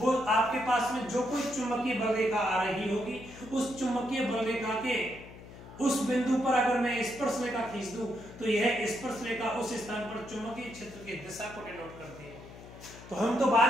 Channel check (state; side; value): noise; left; hum, 17 dB below the sound